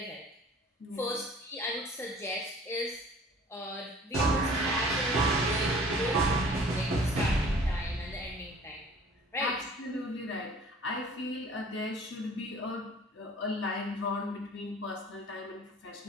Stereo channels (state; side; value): normal; both; correlation 0.49